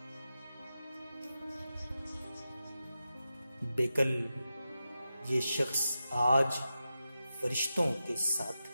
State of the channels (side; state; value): both; inverted; correlation -0.91